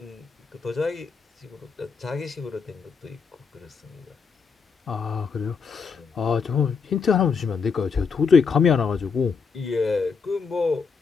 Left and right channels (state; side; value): quieter; right; 5.3 dB